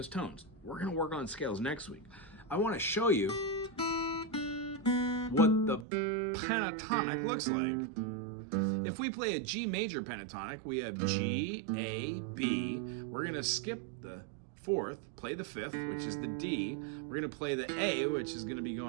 tones. We're going to work on scales next week. I want to show you what the pentatonic looks like. If we play a G major pentatonic, we have G, A, B. We're going to skip the fourth, play the fifth, which is the D. We're going to play the A, which is going to be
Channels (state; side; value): drops out; left; at 5.9 s